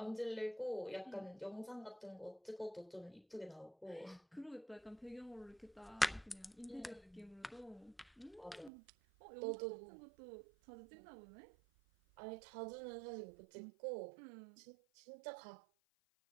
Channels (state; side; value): drops out; left; at 8.7 s